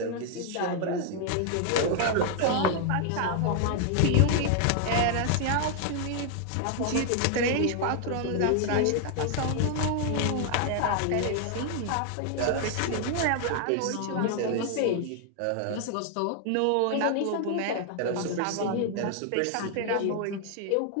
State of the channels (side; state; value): both; different; correlation 0.00